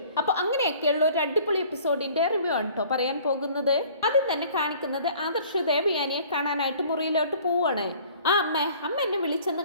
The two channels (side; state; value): both; inverted; correlation -0.52